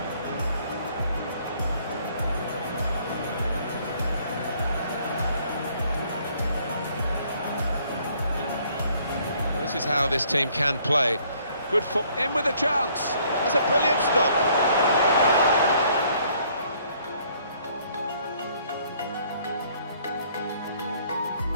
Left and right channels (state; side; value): inverted; both; correlation -0.63